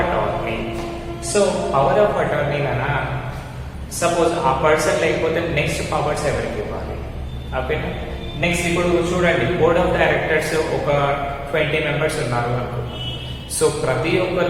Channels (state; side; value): identical; both; correlation 1.00